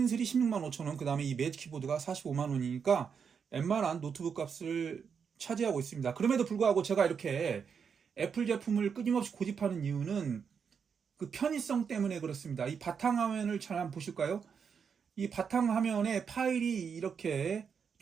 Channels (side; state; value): left; quieter; 6.6 dB